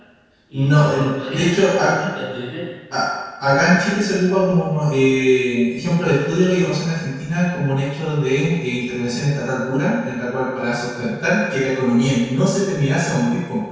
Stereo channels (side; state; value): both; identical; correlation 1.00